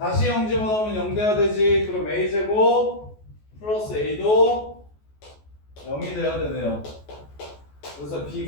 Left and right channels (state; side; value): late; right; 14 ms